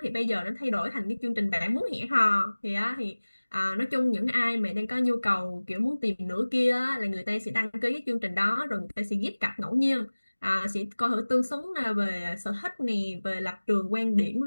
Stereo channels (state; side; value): inverted; both; correlation -1.00